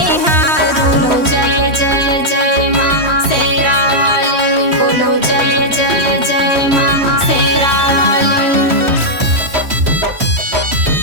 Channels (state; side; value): late; left; 3.1 ms